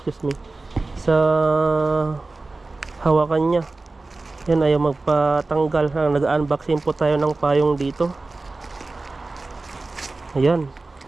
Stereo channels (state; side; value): quieter; left; 3.4 dB